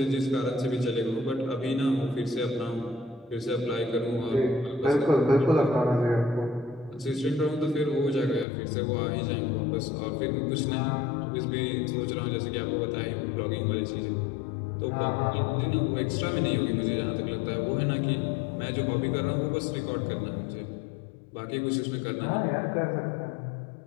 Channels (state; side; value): drops out; right; at 8.5 s